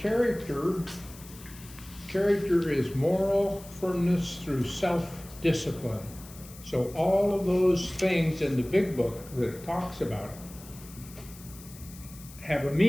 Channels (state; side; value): noise; left; hiss, 18 dB below the sound